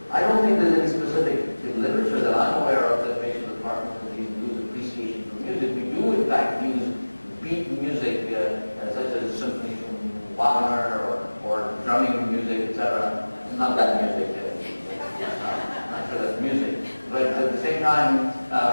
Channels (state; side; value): inverted; both; correlation -1.00